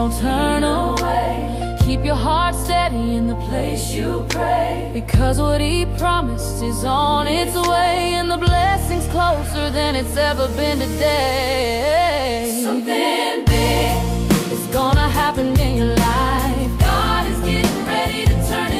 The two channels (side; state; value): both; identical; correlation 1.00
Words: turn away. Keep your heart steady in the place you pray, because what he promised is on its way, and the blessing's closer than it's ever been today. Something big is gonna happen in your life. God is getting ready to turn